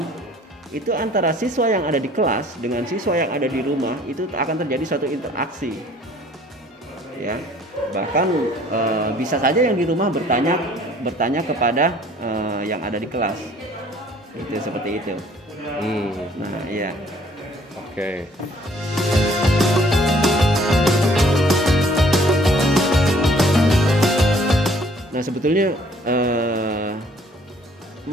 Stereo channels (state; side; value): normal; both; correlation 0.57